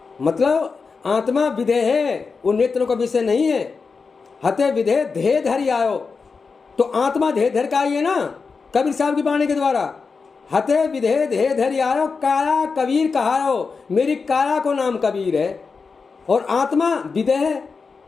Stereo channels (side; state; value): right; quieter; 4.8 dB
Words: मतलब आत्मा विधे है, वो नेत्रों का विषय नहीं है। हते विधे देह धरि आयो, तो आत्मा देह धर का आई है ना कबीर साहब की वाणी के द्वारा। हते विधे देह धरि आयो, काया कबीर कहायो, मेरी काया को नाम कबीर है और आत्मा विधे है,